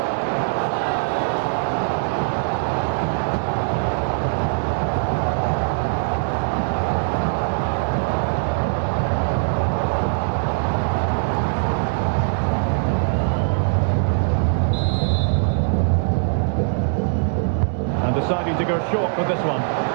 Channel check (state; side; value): silent; left; digital silence